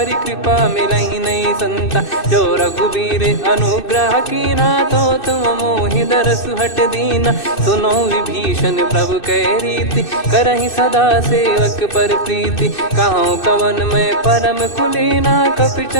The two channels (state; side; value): late; right; 2.6 ms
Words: कृपा मिलहि नहीं संता। जो रघुबीर अनुग्रह कीना तो तुम मोहि दरसु हट दीना। सुनो विभीषण प्रभु कह रीति करहि सदा सेवक पर प्रीति। कहूँ कवन में परम कुलीना कपि